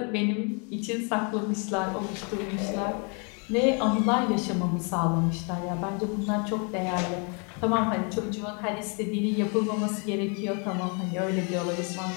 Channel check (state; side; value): quieter; right; 35.8 dB